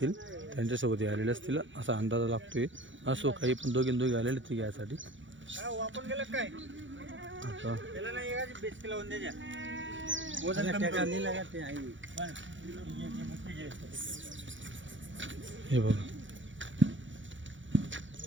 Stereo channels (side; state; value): left; late; 0.55 ms